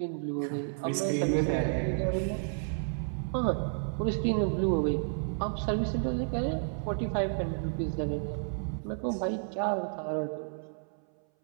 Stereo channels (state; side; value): silent; left; 57 dB below the other